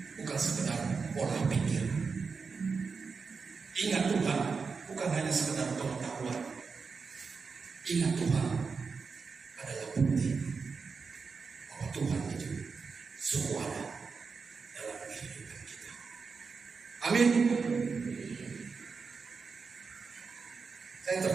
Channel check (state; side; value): quieter; left; 5.0 dB